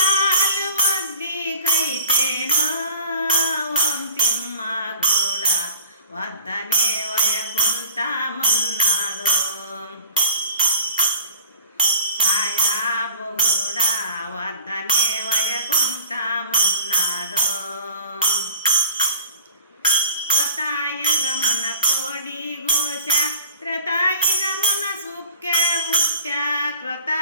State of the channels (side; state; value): both; inverted; correlation -0.47